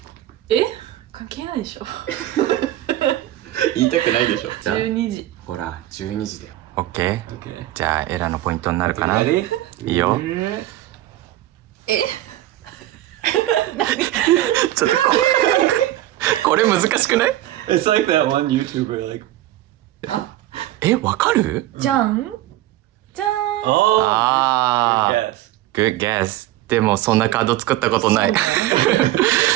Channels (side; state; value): left; quieter; 14.8 dB